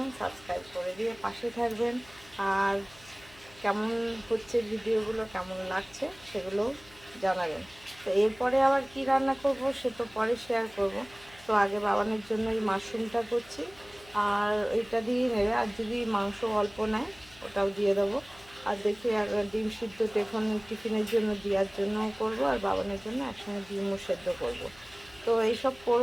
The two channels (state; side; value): noise; left; hum, 24 dB below the sound